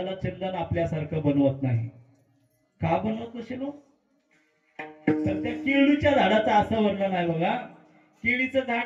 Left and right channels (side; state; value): both; identical; correlation 1.00